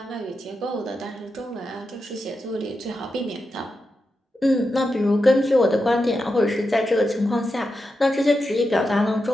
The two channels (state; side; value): normal; both; correlation 0.88